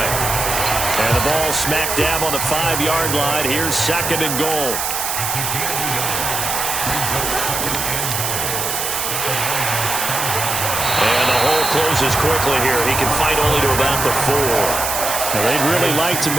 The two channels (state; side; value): noise; right; hiss, 2 dB below the sound